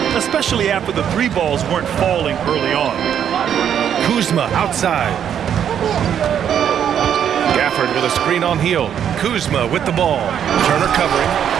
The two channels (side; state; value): left; quieter; 9.0 dB